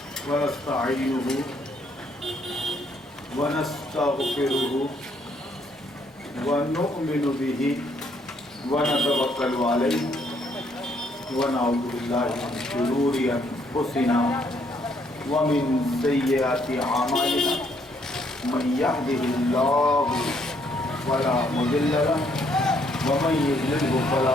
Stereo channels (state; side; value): normal; both; correlation 0.69